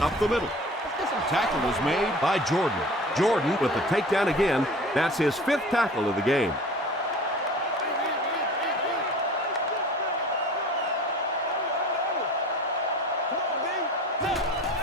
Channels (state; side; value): normal; both; correlation 0.42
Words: up the middle. Tackle was made by Jordan. Jordan with the takedown again. That's his 5th tackle of the game.